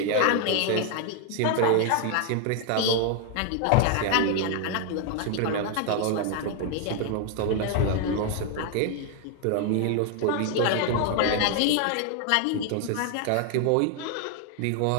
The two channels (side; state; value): both; different; correlation 0.00